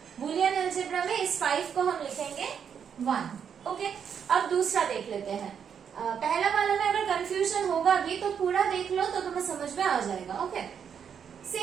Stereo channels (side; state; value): left; quieter; 7.6 dB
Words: बुलियन अलजेब्रा में इस 5 को हम लिखेंगे 1. ओके, अब दूसरा देख लेते हैं. पहला वाला में अगर कंफ्यूजन होगा भी तो पूरा देख लो तो तुम्हें समझ में आ जाएगा. ओके,